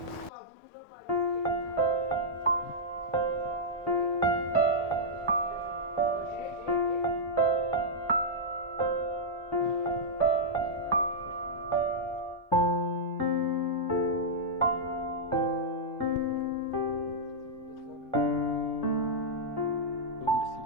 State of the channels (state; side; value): normal; both; correlation -0.08